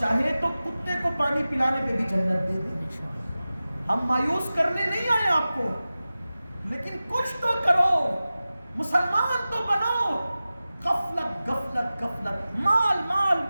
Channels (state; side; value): inverted; both; correlation -0.96